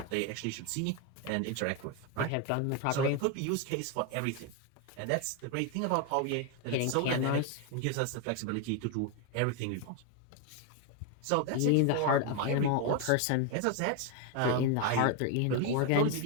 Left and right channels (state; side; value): different; both; correlation 0.01